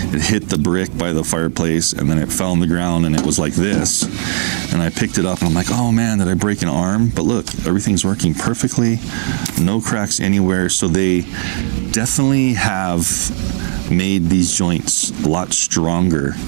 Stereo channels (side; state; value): left; silent; digital silence